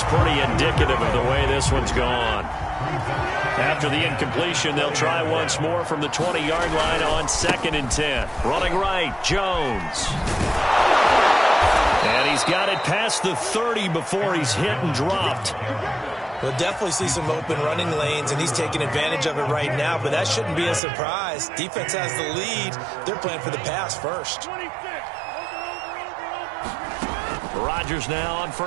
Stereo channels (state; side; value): drops out; left; at 20.8 s